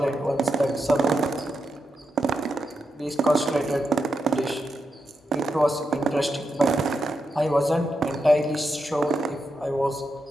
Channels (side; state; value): both; normal; correlation 0.85